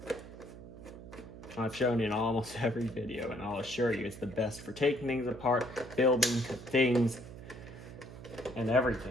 I've shown in almost every video, and I'll assure you it's the best for taking things apart, building things, and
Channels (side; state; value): right; noise; hum, 14 dB below the sound